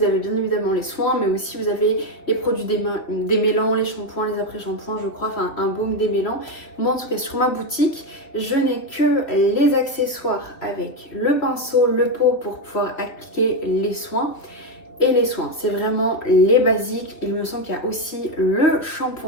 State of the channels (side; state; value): right; late; 3.2 ms